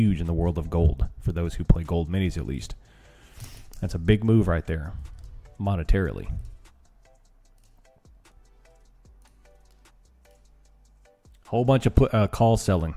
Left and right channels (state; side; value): identical; both; correlation 1.00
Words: in the world of gold for those who play gold minis at least. That's a big move right there. Monetarily. Whole bunch of call selling